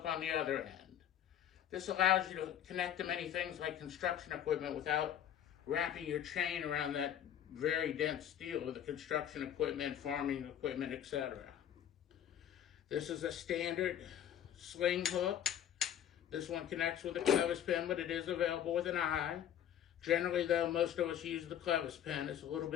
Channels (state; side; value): quieter; right; 10.1 dB